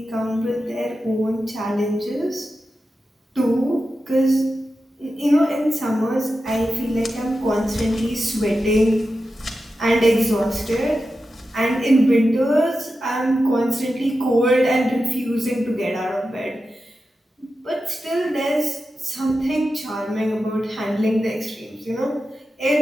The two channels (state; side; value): normal; both; correlation 0.91